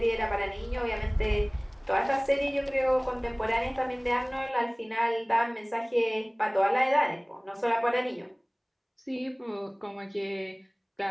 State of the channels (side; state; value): both; identical; correlation 1.00